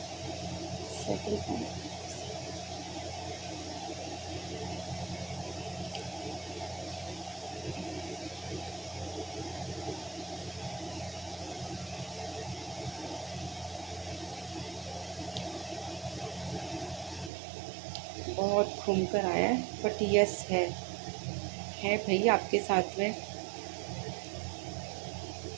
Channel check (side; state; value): left; drops out; at 17.3 s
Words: सेकंड पाइल, बहुत घूम कर आया है, बट यस है भाई आपके साथ में।